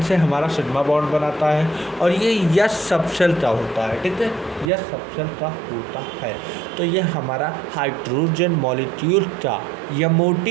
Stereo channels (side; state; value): left; drops out; at 4.7 s